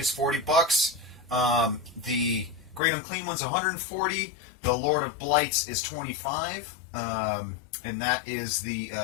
$40. The Great Unclean one's $140. The Lord of Blights is $25. And that is the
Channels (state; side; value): drops out; right; at 2.8 s